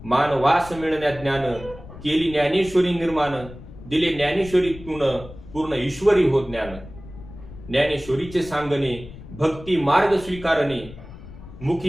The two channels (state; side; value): noise; left; rumble, 16 dB below the sound